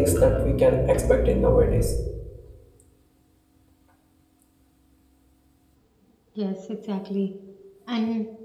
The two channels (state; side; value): identical; both; correlation 1.00